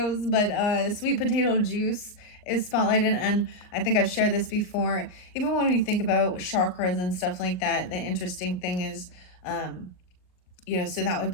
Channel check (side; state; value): right; late; 38 ms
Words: but sweet potato juice is spotlighted, and I think I've shared this before. Even when you think about chakras and stuff like that, the interesting thing is, so that would